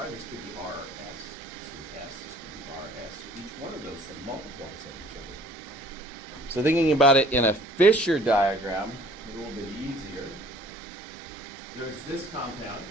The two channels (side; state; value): both; normal; correlation 0.53